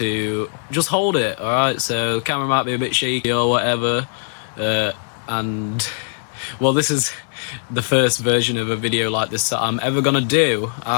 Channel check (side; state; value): right; silent; digital silence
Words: just hold it. Alright, so the camera might be a bit shaky or whatever, and well, this is the first version of a video like this that I'm ever gonna do.